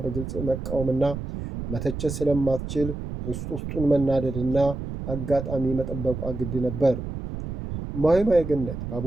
በግልጽ መቃወምና መተቸት ስለማትችል ውስጡን መናደድና አጋጣሚ መጠበቋ ግድ ነበር። እማሆይ ማየገነት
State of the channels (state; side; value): noise; right; rumble, 6 dB below the sound